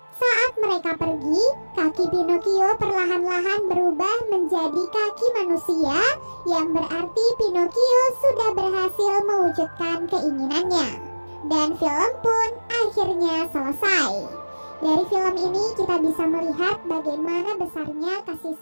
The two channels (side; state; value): both; inverted; correlation -1.00